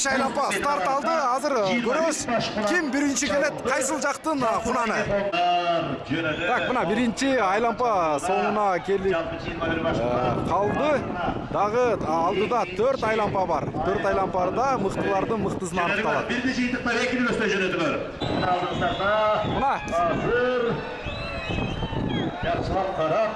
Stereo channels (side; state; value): both; identical; correlation 1.00